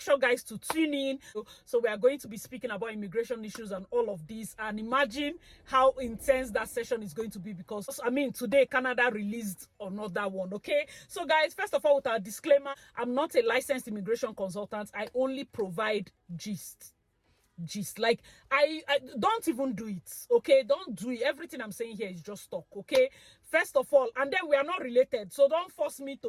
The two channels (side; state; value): both; identical; correlation 1.00